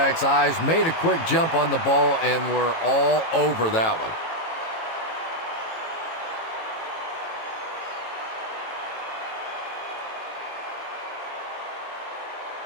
eyes, made a quick jump on the ball, and were all over that one.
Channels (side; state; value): right; late; 18 ms